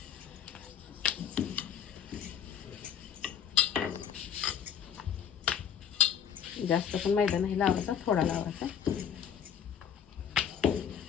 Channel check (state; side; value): quieter; right; 8.3 dB